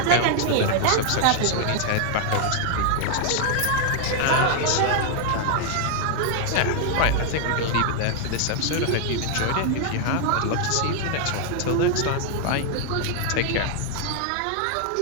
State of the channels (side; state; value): both; different; correlation 0.00